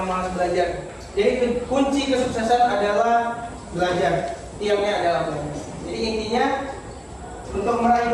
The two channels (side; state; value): both; identical; correlation 1.00